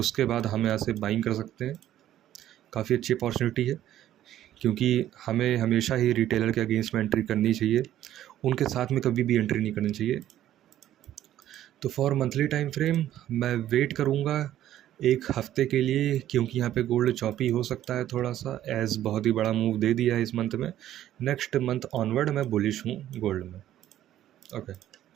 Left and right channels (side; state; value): left; quieter; 12.4 dB